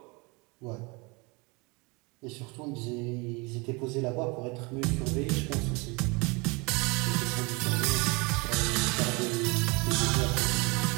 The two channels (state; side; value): quieter; left; 27.8 dB